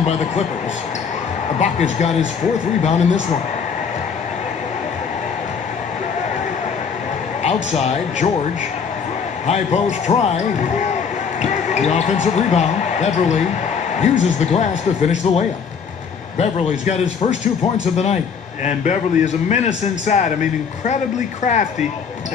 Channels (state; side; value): quieter; right; 6.3 dB